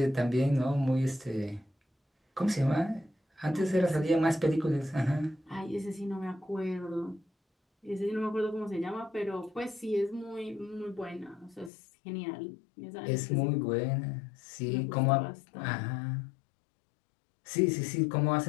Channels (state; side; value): drops out; right; at 11.7 s